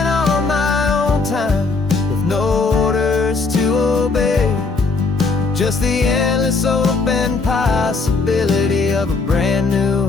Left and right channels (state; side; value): quieter; right; 4.1 dB